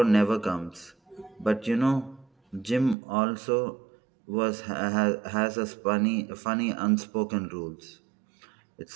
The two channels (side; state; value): left; drops out; at 3.0 s